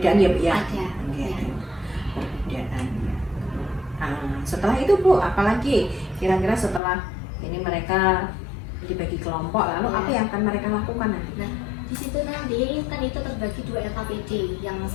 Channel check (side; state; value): right; drops out; at 6.8 s